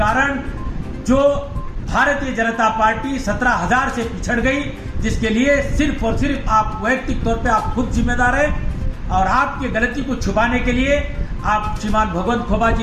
जो भारतीय जनता पार्टी 17,000 से पिछड़ गई, जिसके लिए सिर्फ और सिर्फ आप वैयक्तिक तौर पे आप खुद जिम्मेदार हैं। और आपकी गलती को छुपाने के लिए आप श्रीमान भगवंत खोबा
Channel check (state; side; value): identical; both; correlation 1.00